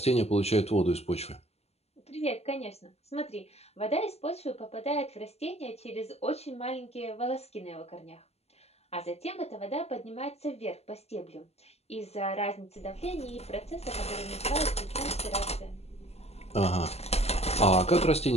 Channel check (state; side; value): late; right; 0.30 ms